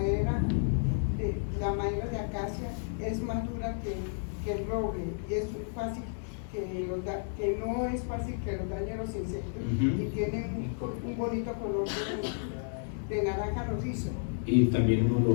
de acacia, es más dura que el roble y es fácil que no es fácil que los dañen los insectos y tiene un bonito color de naranja rojizo. Y también un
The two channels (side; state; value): right; silent; digital silence